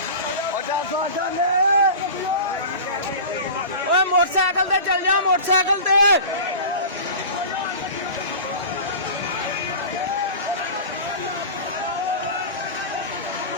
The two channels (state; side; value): inverted; both; correlation -0.33